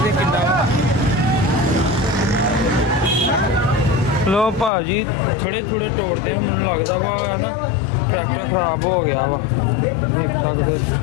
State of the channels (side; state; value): right; drops out; at 4.7 s